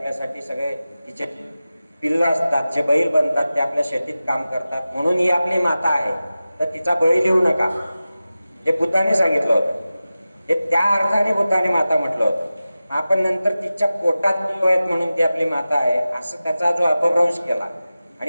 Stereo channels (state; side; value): inverted; both; correlation -0.95